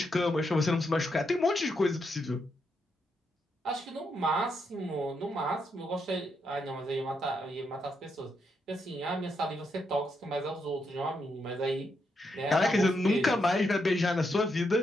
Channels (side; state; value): both; normal; correlation 0.80